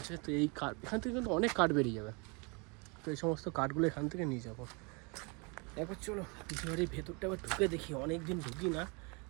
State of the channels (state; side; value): quieter; left; 31.3 dB